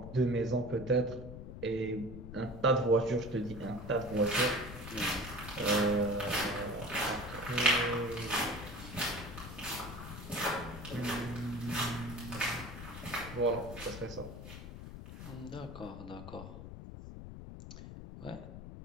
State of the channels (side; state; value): left; noise; rumble, 11 dB below the sound